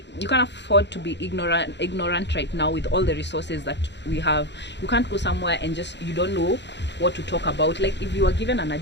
to be ignorant right now with all the resources that we have. You can't go somewhere and just you don't know what to talk about. Like if you are given an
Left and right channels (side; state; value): right; late; 0.51 ms